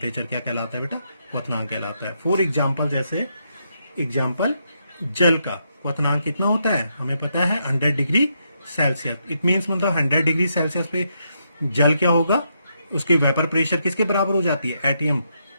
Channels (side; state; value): both; inverted; correlation -0.79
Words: क्या कहलाता है बेटा, क्वथनांक कहलाता है। फॉर एग्जाम्पल, जैसे एग्जाम्पल जल का क्वथनांक कितना होता है, हमें पता है 100 डिग्री सेल्सियस। इट मीन्स मतलब 100 डिग्री सेल्सियस पे जल क्या होगा, उसके वेपर प्रेशर किसके बराबर हो जाती है, एटीएम